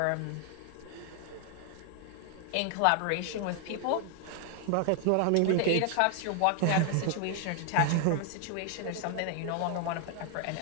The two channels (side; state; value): both; different; correlation 0.00